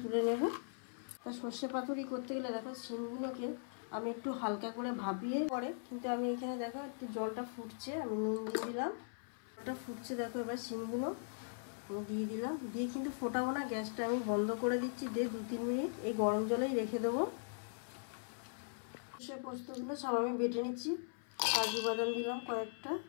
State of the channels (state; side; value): silent; right; 51 dB below the other